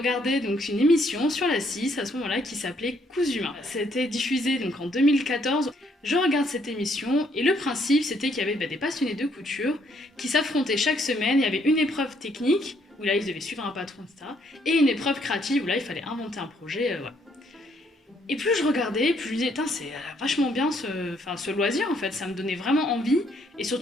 donc une émission sur la 6 à ce moment-là qui s'appelait Cousu Main. C'était diffusé donc en 2014. Je regarde cette émission et le principe c'était qu'il y avait des passionnés de couture qui s'affrontaient chaque semaine. Il y avait une épreuve technique où là ils devaient suivre un patron, etc. Et une épreuve créative où là il fallait inventer un projet, voilà. Et plus je regardais, plus je me disais, c'est vachement bien ce loisir en fait, ça me donnait vraiment envie. Et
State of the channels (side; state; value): both; normal; correlation 0.69